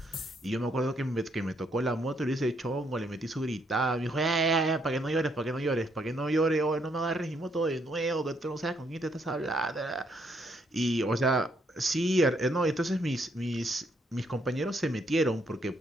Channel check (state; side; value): normal; both; correlation 0.72